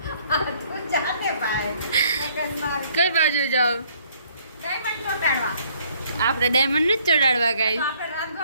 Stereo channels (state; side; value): inverted; both; correlation -0.63